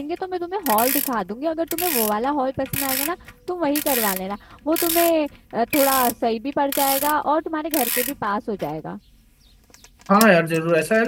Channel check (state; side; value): identical; both; correlation 1.00